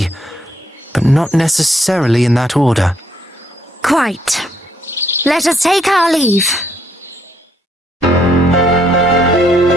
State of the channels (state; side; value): normal; both; correlation 0.71